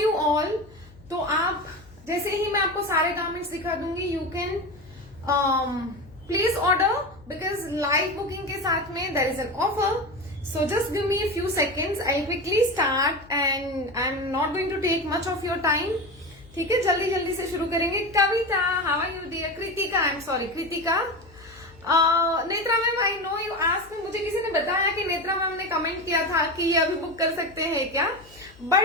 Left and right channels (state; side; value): noise; left; hum, 24 dB below the sound